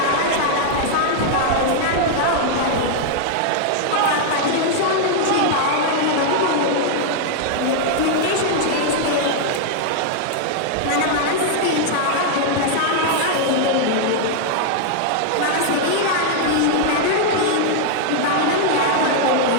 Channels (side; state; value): both; different; correlation 0.00